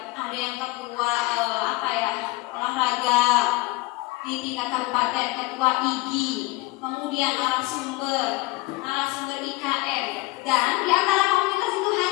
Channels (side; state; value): right; quieter; 21.8 dB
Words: Ada yang ketua olahraga di tingkat kabupaten, ketua IGI, kemudian narasumber IKM, dan di antara komunitas itu